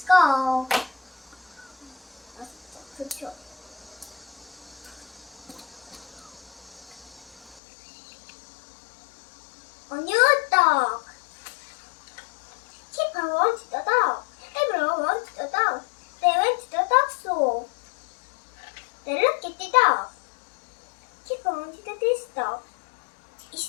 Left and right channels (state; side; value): drops out; right; at 7.6 s